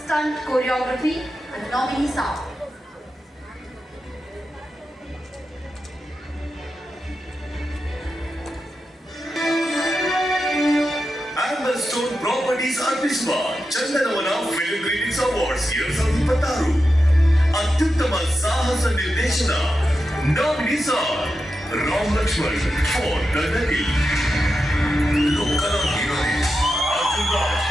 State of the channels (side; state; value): both; normal; correlation 0.89